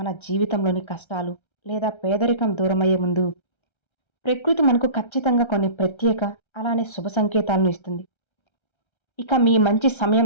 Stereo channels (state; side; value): late; right; 1.3 ms